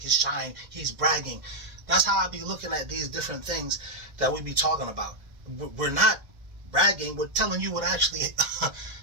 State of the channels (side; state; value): left; late; 2.1 ms